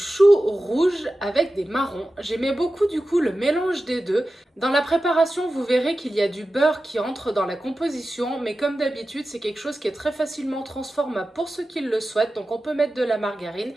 rouge avec des marrons. J'aimais beaucoup du coup le mélange des deux. Dans la préparation, vous verrez qu'il y a du beurre qui entre dans la composition, mais comme d'habitude, c'est quelque chose qui est très facilement transformable pour ceux qui le souhaitent. Donc on peut mettre de la margarine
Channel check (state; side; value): normal; both; correlation 0.94